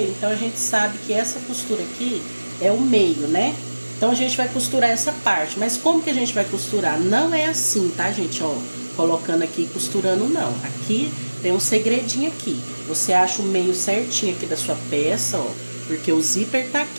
então a gente sabe que essa costura aqui é o meio, né? Então, a gente vai costurar essa parte. Mas como que a gente vai costurar? Não é assim, tá, gente? Ó, colocando aqui e costurando, não. Aqui tem um segredinho aqui. Você acha o meio certinho aqui da sua peça, ó. Porque o zíper tá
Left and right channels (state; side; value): inverted; both; correlation -1.00